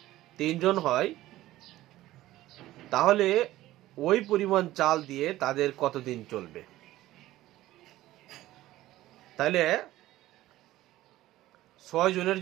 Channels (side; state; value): left; quieter; 15.7 dB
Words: 3 জন হয়, তাহলে ওই পরিমাণ চাল দিয়ে তাদের কতদিন চলবে? তাহলে 6 জনের